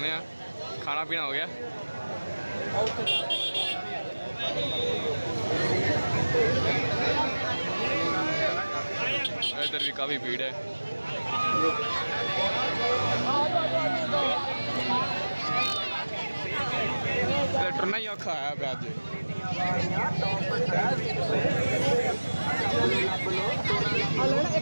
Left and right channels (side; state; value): both; inverted; correlation -1.00